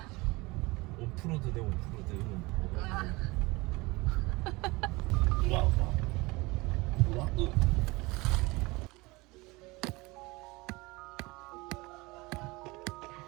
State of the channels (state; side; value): quieter; left; 23.4 dB